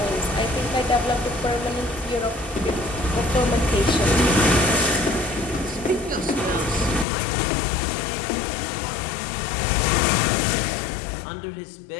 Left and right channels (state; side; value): drops out; right; at 7.1 s